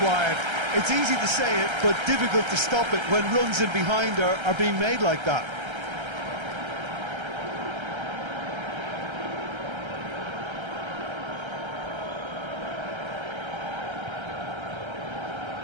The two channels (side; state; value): left; late; 1.3 ms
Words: It's easy to say it, but difficult to stop it when runs in behind are being made like that.